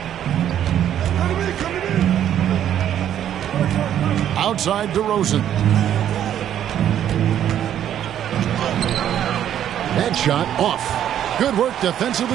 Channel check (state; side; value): quieter; left; 10.5 dB